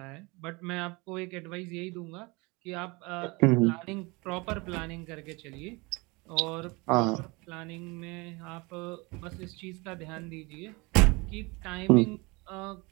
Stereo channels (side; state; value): left; quieter; 25.9 dB